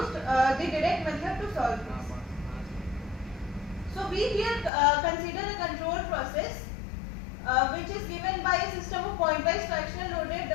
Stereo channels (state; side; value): drops out; right; at 4.7 s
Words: the direct method to solve this. So we here consider a control process which is given by a system of pointwise fractional loaded